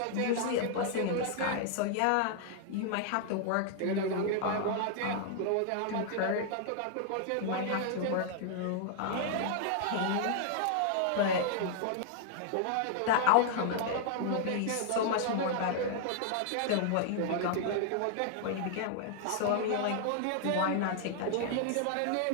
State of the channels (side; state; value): both; different; correlation -0.01